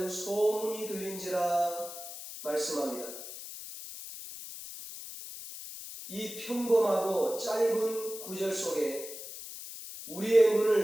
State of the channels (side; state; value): left; noise; hiss, 11 dB below the sound